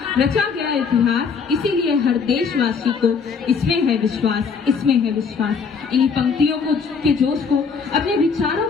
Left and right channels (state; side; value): quieter; right; 5.6 dB